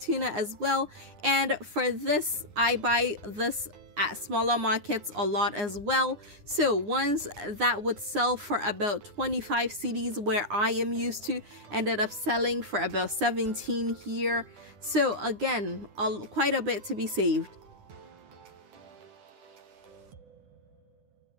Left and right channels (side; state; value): left; late; 9.7 ms